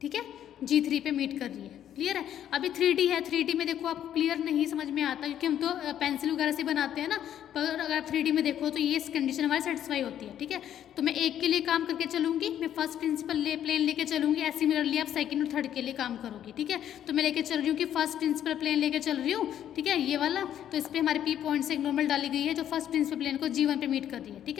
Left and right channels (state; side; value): quieter; right; 10.6 dB